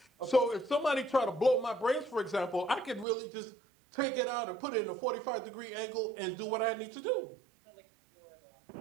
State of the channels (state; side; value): drops out; left; at 3.1 s